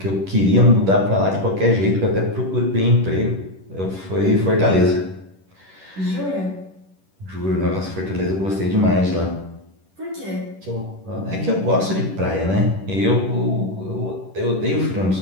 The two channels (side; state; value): left; late; 10 ms